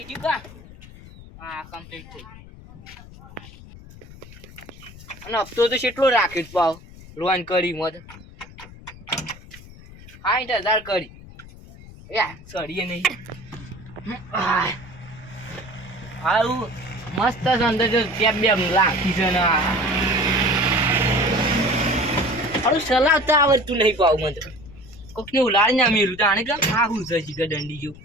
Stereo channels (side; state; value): left; noise; rumble, 18 dB below the sound